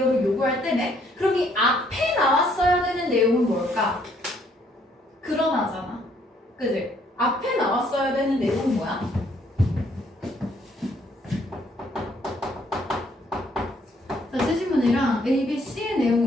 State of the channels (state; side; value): normal; both; correlation 0.66